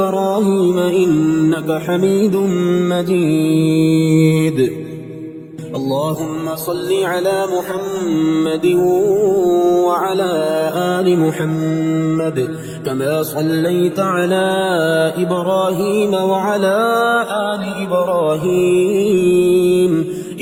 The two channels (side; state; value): both; identical; correlation 1.00